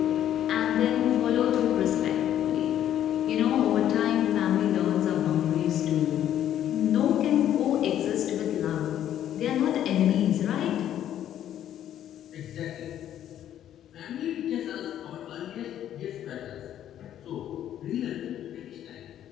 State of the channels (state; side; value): quieter; right; 11.0 dB